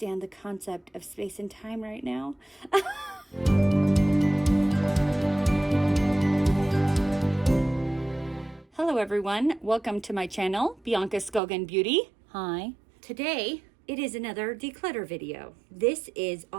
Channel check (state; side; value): drops out; left; at 11.4 s